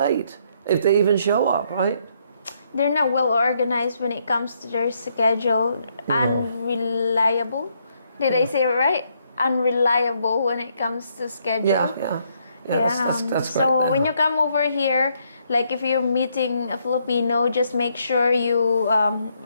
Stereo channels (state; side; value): inverted; both; correlation -0.73